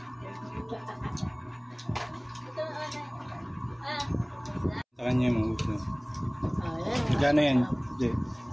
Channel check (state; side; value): identical; both; correlation 1.00